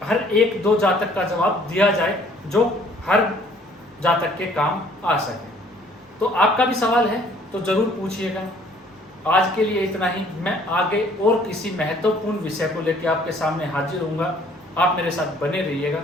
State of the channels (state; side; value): normal; both; correlation 0.58